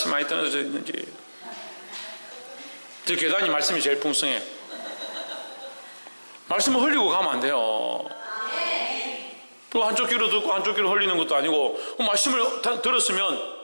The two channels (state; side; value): inverted; both; correlation -1.00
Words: 많이 떨어져 있는지. 저 계단이 말씀이 제일 풍성해요. 말씀을 흘리고 가면 안 돼요. 또 한쪽 귀로 듣고 한쪽 귀로 흘리는 것도 아니고, 말씀을 들었으면